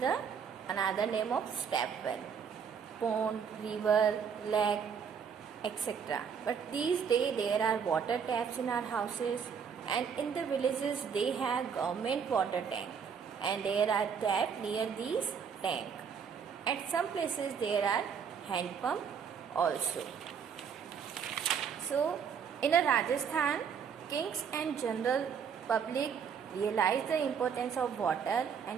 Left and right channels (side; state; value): left; quieter; 6.9 dB